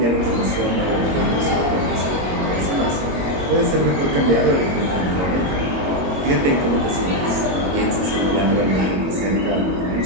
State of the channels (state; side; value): late; left; 22 ms